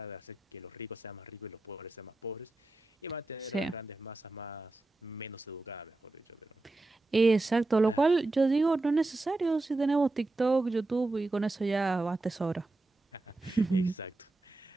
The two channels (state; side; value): quieter; left; 3.0 dB